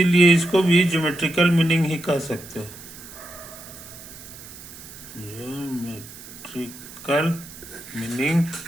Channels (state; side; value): noise; right; hiss, 16 dB below the sound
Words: इसको भी ज्योमेट्रिकल मीनिंग ही कह सकते हैं। Geometrical meaning